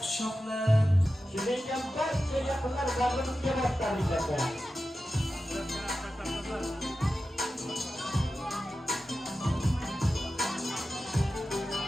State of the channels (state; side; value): normal; both; correlation 0.93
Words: quchoqlab, Kelayotgan barcha yaqinlar bag'rimizga boshlaringlar.